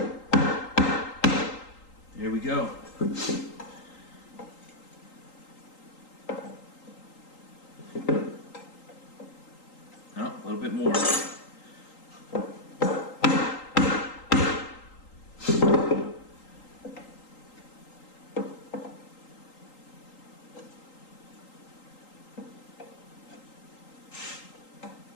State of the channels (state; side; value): late; right; 3.8 ms